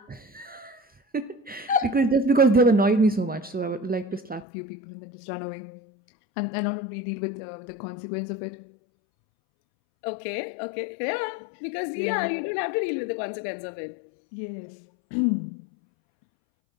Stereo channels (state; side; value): drops out; right; at 4.5 s